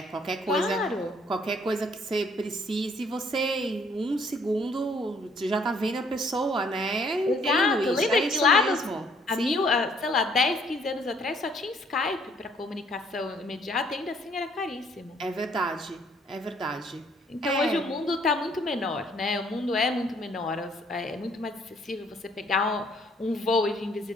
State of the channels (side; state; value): both; normal; correlation 0.64